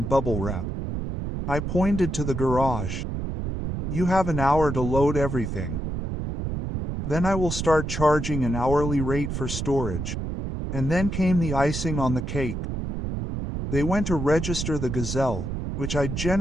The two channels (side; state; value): right; noise; rumble, 4 dB below the sound